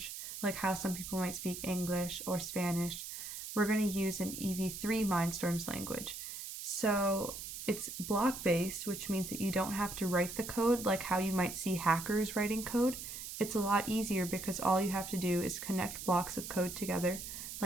like how some people might speak English or Spanish. We're going to use an EV3 Mindstorms language. So it's block-based, which means that you don't have to write the code like how you might see hackers writing code. It's a lot easier because all you have to do is connect blocks of code together,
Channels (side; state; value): right; noise; hiss, 8 dB below the sound